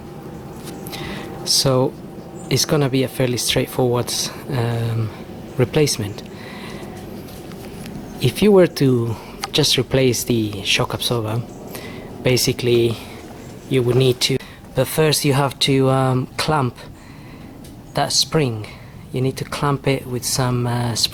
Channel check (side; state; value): both; identical; correlation 1.00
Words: So it's gonna be a fairly straightforward replacement. If you were to just replace the shock absorber, basically you would need to, but first you have to clamp that spring. You need to clamp it with some